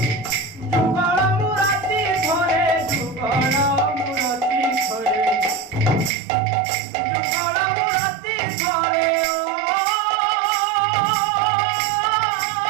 যুগল মুরাতি ধরে যুগল মুরাতি ধরে যুগল মুরাতি ধরে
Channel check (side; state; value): left; drops out; at 6.1 s